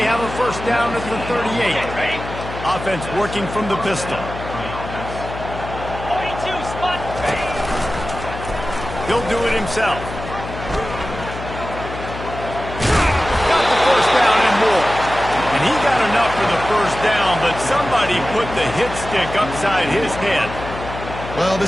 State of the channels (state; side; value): noise; left; hum, 10 dB below the sound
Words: have a first down at the 38. Offense working from the pistol. 42 spot. He'll do it himself. Got the first down and more. And he got enough for the first down, but somebody put the hit stick upside his head. Well,